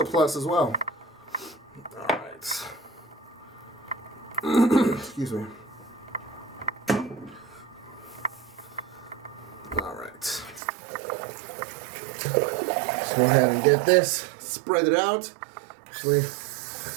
plus as well. Alright. Excuse me. Alright. Let's go ahead and get this. Spread it out. Actually,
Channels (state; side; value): drops out; left; at 10.6 s